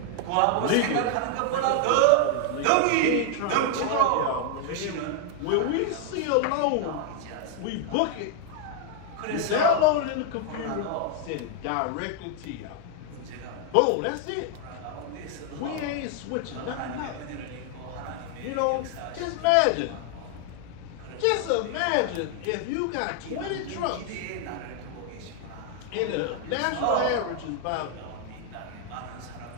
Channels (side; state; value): both; different; correlation 0.00